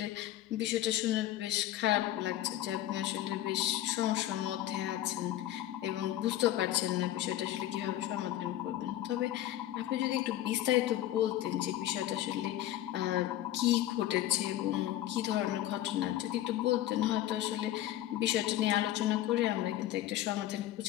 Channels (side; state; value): right; quieter; 13.3 dB